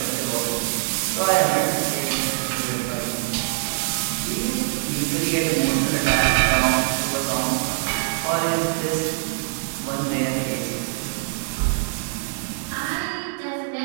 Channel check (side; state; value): left; silent; digital silence